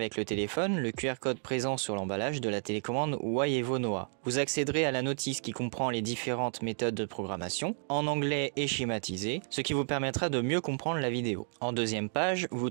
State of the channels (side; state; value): left; silent; digital silence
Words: le téléphone le QR code présent sur l'emballage de la télécommande Waievo Noah. Vous accéderez à la notice qui comprend les différentes méthodes de programmation, en anglais et schématisé, ce qui vous permettra de mieux comprendre la vidéo. En deuxième page, vous